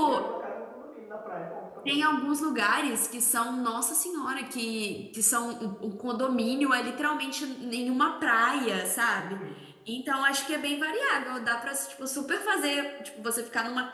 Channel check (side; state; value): both; identical; correlation 1.00